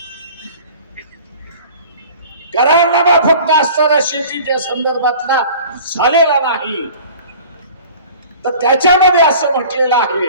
करारनामा फक्त असताना शेतीच्या संदर्भातला झालेला नाही, तर त्याच्यामध्ये असं म्हटलेलं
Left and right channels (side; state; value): both; inverted; correlation -0.44